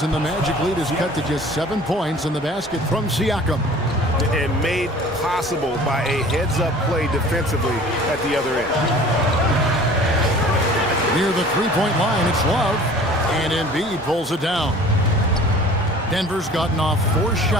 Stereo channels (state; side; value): normal; both; correlation 0.47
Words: and the Magic lead is cut to just 7 points in the basket from Siakam. And made possible by a heads-up play defensively at the other end. Near the three-point line, it's Love. And Embiid pulls it down. Denver's gotten off 4